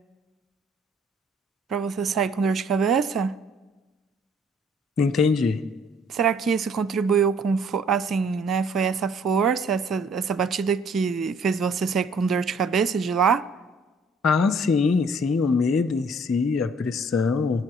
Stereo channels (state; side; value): normal; both; correlation 0.59